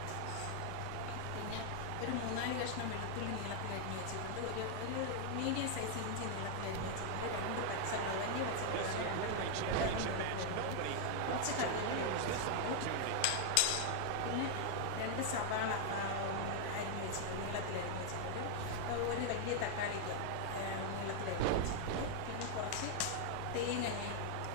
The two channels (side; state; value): both; different; correlation 0.00